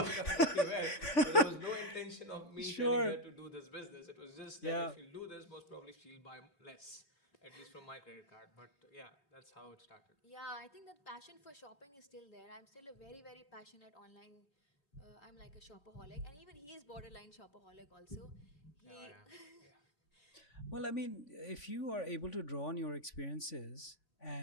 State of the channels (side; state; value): right; late; 3.5 ms